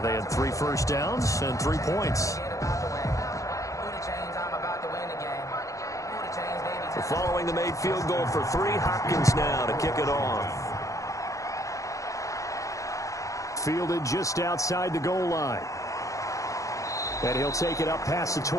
they had 3 first downs and 3 points. Following the made field goal for 3, Hopkins now to kick it off. Fielded just outside the goal line. And he'll take it up past the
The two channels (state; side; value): late; right; 0.16 ms